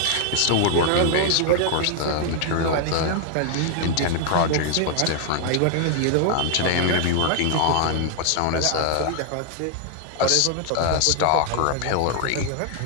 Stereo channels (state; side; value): different; both; correlation 0.00